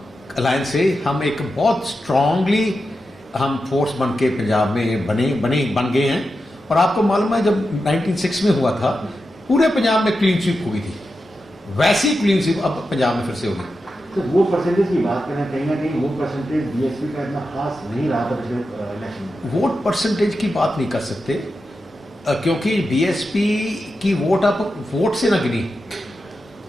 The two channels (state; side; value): normal; both; correlation 0.89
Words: अलायंस से हम एक बहुत स्ट्रांगली हम फोर्स बन के पंजाब में बन गए हैं। और आपको मालूम है जब 1996 में हुआ था पूरे पंजाब में क्लीन स्वीप हुई थी, वैसी क्लीन स्वीप अब पंजाब में फिर से होगी। तो वो परसेंटेज की बात करें, कहीं ना कहीं वो परसेंटेज बीएसपी का इतना खास नहीं रहा था पिछले इलेक्शन में। वोट परसेंटेज की बात नहीं कर सकते क्योंकि बीएसपी की वोट आप वोट से ना गिनी,